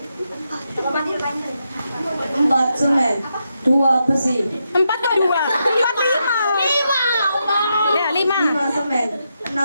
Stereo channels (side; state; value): both; inverted; correlation -0.84